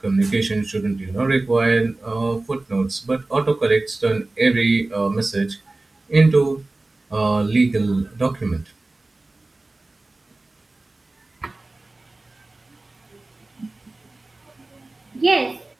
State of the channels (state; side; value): quieter; left; 3.0 dB